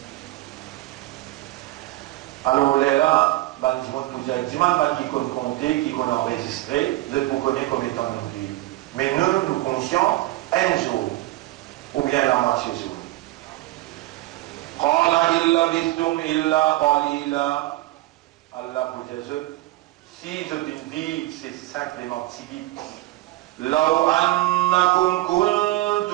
Alors là, dimanche, qui compte compter, qui compte enregistrer, vous êtes pour connaître comme étant nos vies. Mais nous conscients, un jour, ou bien la moitié jour. قال إن لبثتم إلا قليلا. Allah pour Jésus, si je te dis, c'est simplement typique. لو أنكم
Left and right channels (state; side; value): quieter; left; 17.8 dB